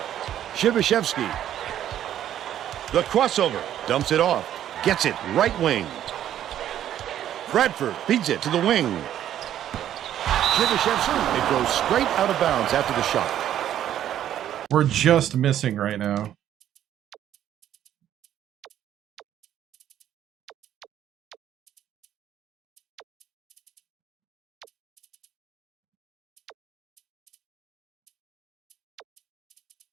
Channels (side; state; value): left; quieter; 11.2 dB